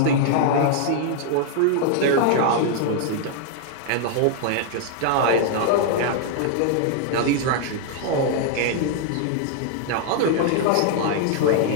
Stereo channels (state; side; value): different; both; correlation 0.00